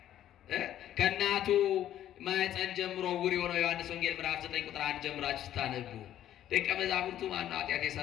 ከእናቱ ማኅፀን ጀምሮ ዕውር የሆነው ዮሐንስ ወንጌል ምዕራፍ 9 ቁጥር 1 ጀምራችሁ ስታነቡ ደቀ መዛሙርቱ ማነው ኃጢአት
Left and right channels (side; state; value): right; quieter; 11.7 dB